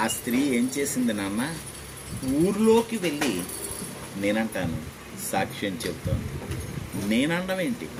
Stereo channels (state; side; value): identical; both; correlation 1.00